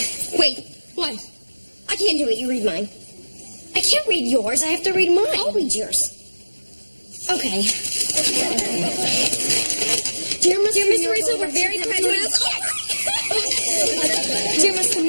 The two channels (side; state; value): both; inverted; correlation -1.00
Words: Wait, what? I can't do it. You read mine. I can't read yours. I have to read mine. I'll read yours. Okay. Dear Mr. Rizzo, we're very proud to announce... Dear Mr.